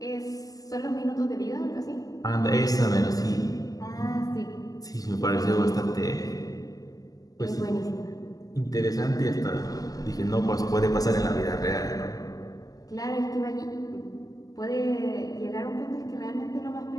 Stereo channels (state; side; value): late; right; 0.17 ms